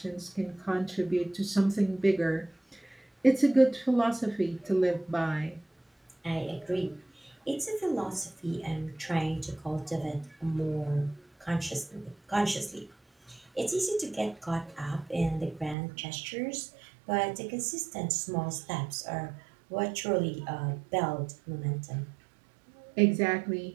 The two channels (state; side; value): drops out; left; at 15.8 s